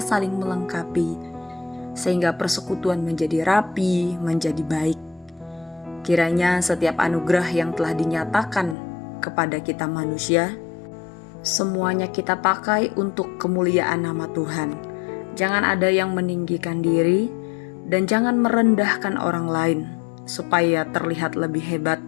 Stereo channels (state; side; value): drops out; right; at 8.8 s